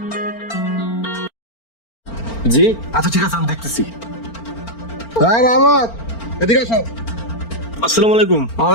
জি আচ্ছা, ঠিক আছে, আমি দেখতেছি। হ্যাঁ রহমত, এদিকে আসো। আসসালামু আলাইকুম।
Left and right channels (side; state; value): right; late; 4.4 ms